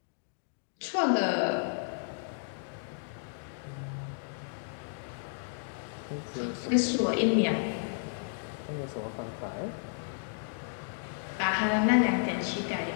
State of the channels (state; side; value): silent; right; digital silence